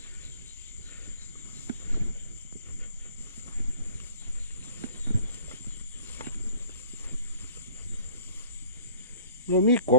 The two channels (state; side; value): inverted; both; correlation -0.51